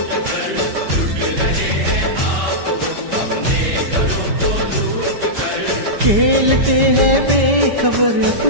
खेलते हैं बेखबर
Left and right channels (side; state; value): left; late; 5.1 ms